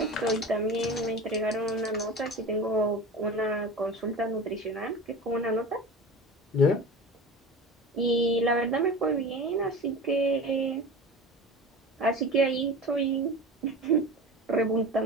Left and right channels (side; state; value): both; normal; correlation 0.32